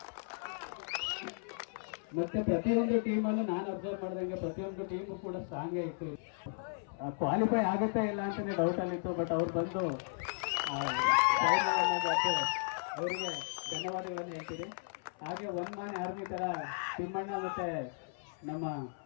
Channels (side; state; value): right; silent; 54 dB below the other